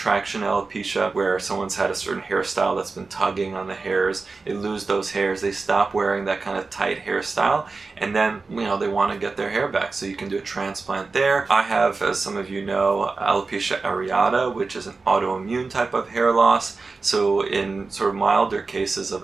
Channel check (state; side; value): quieter; left; 4.0 dB